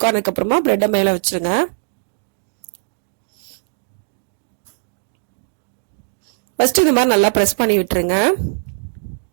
ஆனதுக்கு அப்புறமா பிரெட்டை மேல வச்சிருங்க. ஃபர்ஸ்ட் இந்த மாதிரி நல்லா பிரஸ் பண்ணி விட்டுருங்க.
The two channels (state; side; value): silent; left; 66 dB below the other